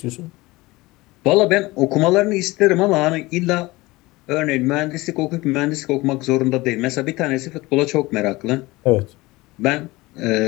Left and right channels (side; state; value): right; quieter; 21.0 dB